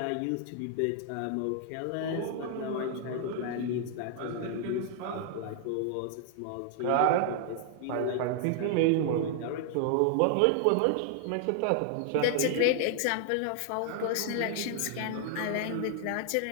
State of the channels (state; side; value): different; both; correlation 0.00